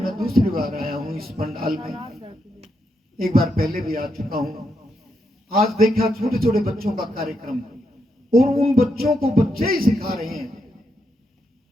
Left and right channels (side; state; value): both; normal; correlation 0.82